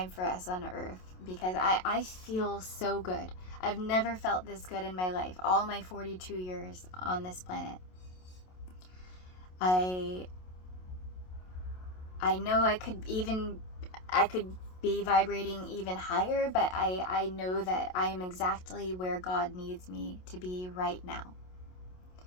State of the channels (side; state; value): right; late; 27 ms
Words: for us on Earth, because I feel so good. I've never felt this good in my life, all my 42 years on this planet. I know I could be vibrating even higher, but I know that I am exactly where God needs me to be right now.